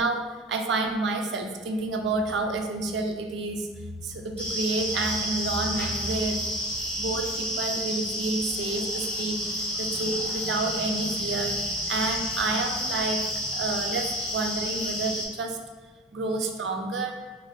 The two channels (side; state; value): both; normal; correlation 0.34